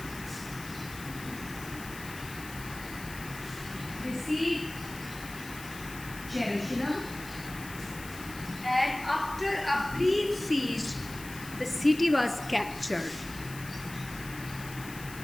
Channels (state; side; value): noise; left; hiss, 14 dB below the sound